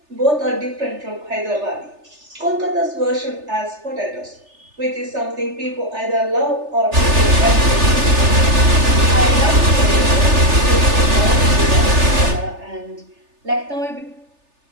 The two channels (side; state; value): left; late; 3.3 ms